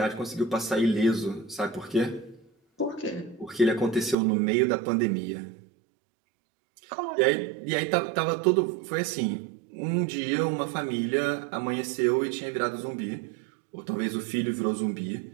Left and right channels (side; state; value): left; drops out; at 4.2 s